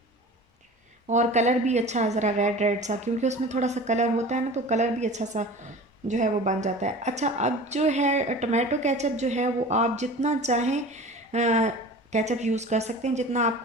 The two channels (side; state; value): both; normal; correlation 0.38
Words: और कलर भी अच्छा ज़रा रेड रेड सा, क्योंकि उसमें थोड़ा सा कलर होता है ना, तो कलर भी अच्छा सा जो है वो बन जाता है। अच्छा अब जो है टमाटो केचप जो है वो आप जितना चाहें केचप यूज़ कर सकते हैं, जितना